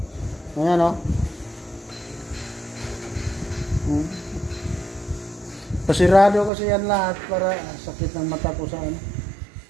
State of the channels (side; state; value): left; drops out; at 6.5 s